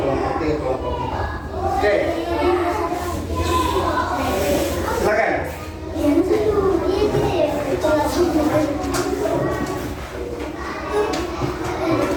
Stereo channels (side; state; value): both; identical; correlation 1.00